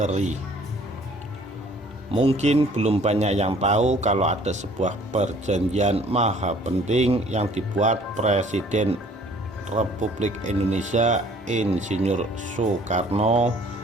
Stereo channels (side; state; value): both; normal; correlation 0.55